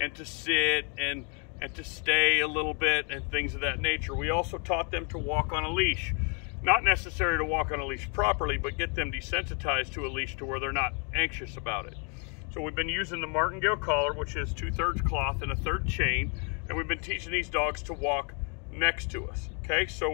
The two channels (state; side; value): quieter; right; 36.8 dB